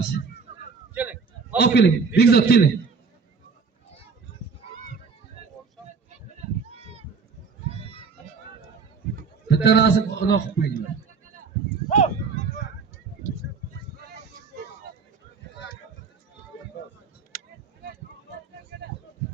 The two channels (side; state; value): left; quieter; 5.2 dB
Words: Keling. Olib keling. Bekzod keling. Bitta rasm uloq qilib qo'yinglar.